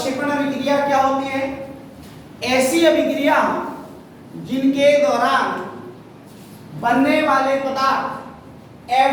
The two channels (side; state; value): both; identical; correlation 1.00